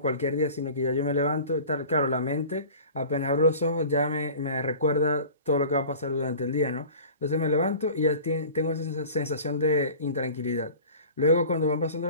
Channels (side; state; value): both; inverted; correlation -0.41